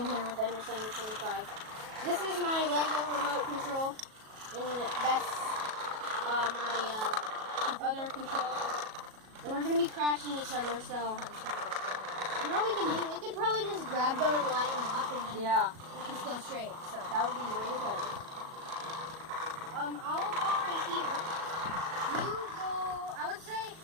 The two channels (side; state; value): left; late; 37 ms